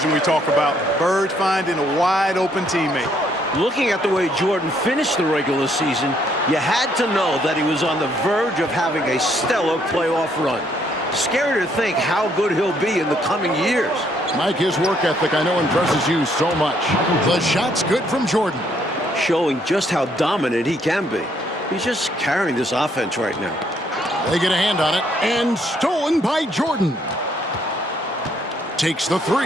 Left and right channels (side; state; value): both; normal; correlation 0.69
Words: we talk about. Bird finding a wide-open teammate. Looking at the way Jordan finished the regular season, you had to know that he was on the verge of having a stellar playoff run. Scary to think how good he'll be in the coming years. Mike, his work ethic I know impresses you so much. The shot's good from Jordan. Showing just how dominant he can be. He's just carrying this offense right now. They get a hand on it, and stolen by Jordan. Takes the